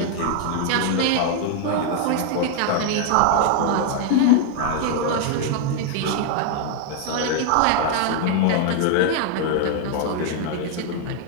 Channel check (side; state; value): both; different; correlation 0.00